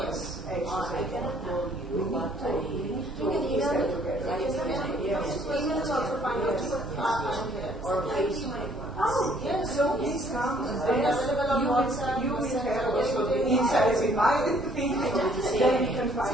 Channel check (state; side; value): normal; both; correlation 0.61